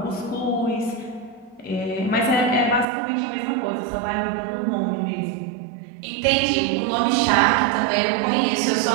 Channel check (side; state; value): left; drops out; at 2.9 s